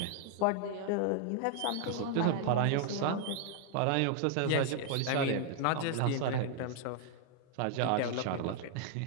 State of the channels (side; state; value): both; different; correlation 0.00